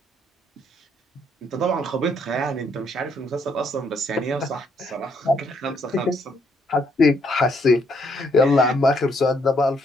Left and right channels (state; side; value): normal; both; correlation 0.71